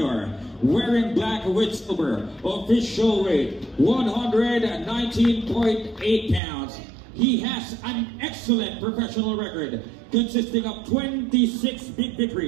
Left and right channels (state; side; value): drops out; left; at 6.4 s